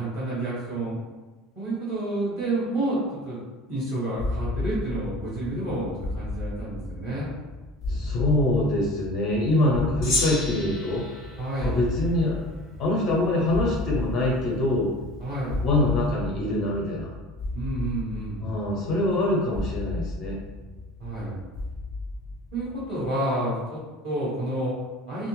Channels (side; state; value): both; normal; correlation 0.43